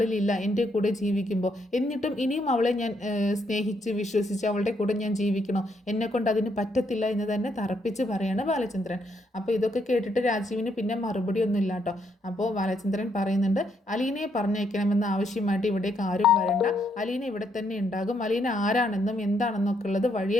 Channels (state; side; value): normal; both; correlation 0.75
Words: എൻ്റെ കൂടെ ജീവിക്കുമ്പോൾ. എന്നിട്ടും ഇനിയും അവളെ ഞാൻ സ്നേഹിച്ച് വിശ്വസിച്ച് അവളുടെ കൂടെ ഞാൻ ജീവിക്കണോ? എന്നെക്കൊണ്ട് അതിന് പറ്റത്തില്ല എന്ന് തന്നെ തറപ്പിച്ച് പറയാണ് ബാലചന്ദ്രൻ. അപ്പോൾ ഇതൊക്കെ കേട്ടിട്ട് രാജീവിന് പിന്നെ മറുപടി ഒന്നും ഇല്ല കേട്ടോ. അപ്പോൾ ബാലചന്ദ്രൻ പറയുന്നുണ്ട്, അലീനയെ പറഞ്ഞയക്കണമെന്ന ആവശ്യമായിട്ട് ഇവിടേക്ക് ആരും വരണ്ട, അലീന ഇവിടെ തന്നെ ഉണ്ടാകും, അലീന ആരാണെന്നും എന്താണെന്നൊക്കെ ഉള്ളത്